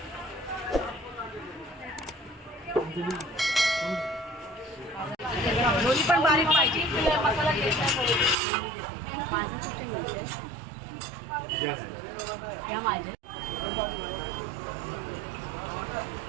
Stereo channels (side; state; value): left; drops out; at 8.3 s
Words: दोन्ही पण बारीक पाहिजे. मसाला